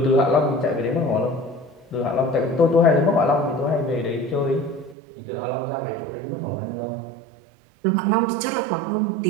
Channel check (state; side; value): drops out; left; at 5.0 s